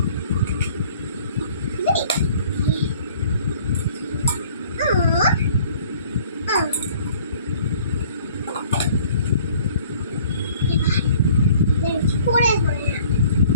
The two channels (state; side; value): inverted; both; correlation -0.54